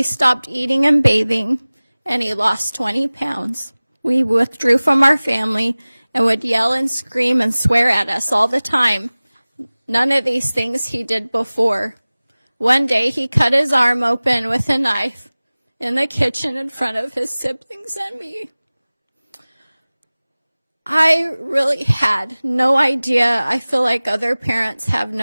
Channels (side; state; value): both; inverted; correlation -0.99